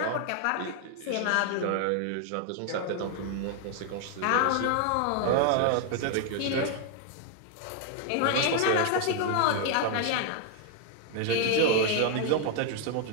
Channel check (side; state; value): both; different; correlation 0.00